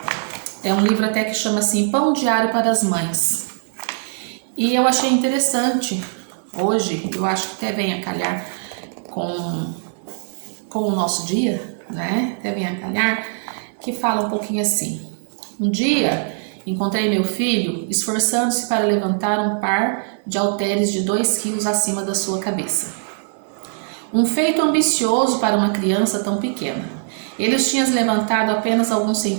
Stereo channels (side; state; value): left; silent; digital silence